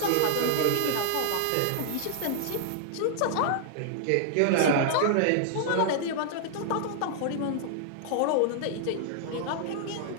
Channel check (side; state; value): both; different; correlation -0.01